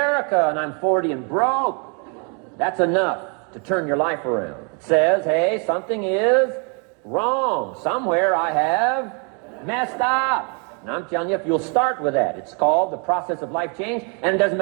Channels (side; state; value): left; quieter; 37.1 dB